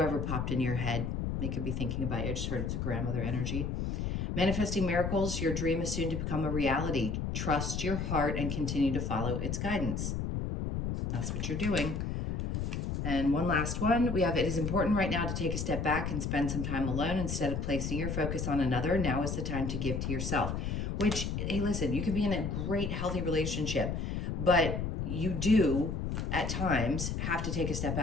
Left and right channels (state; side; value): noise; left; rumble, 2 dB below the sound